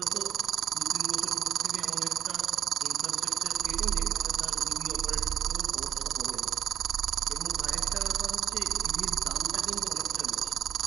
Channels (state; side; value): quieter; left; 9.7 dB